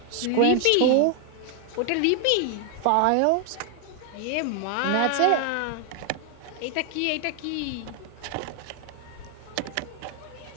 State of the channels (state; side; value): different; both; correlation 0.00